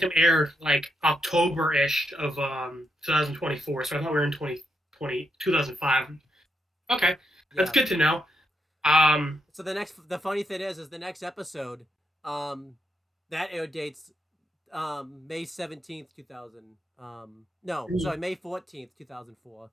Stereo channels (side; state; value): both; normal; correlation 0.80